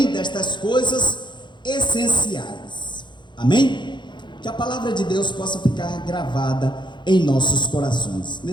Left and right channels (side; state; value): right; late; 0.22 ms